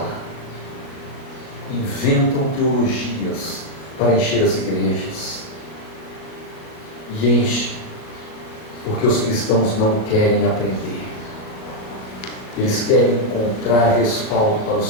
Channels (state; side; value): late; right; 37 ms